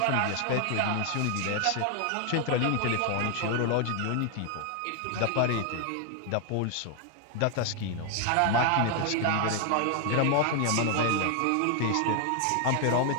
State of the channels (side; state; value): both; different; correlation 0.00